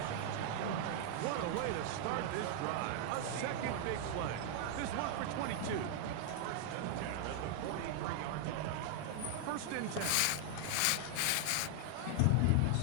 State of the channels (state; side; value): different; both; correlation 0.00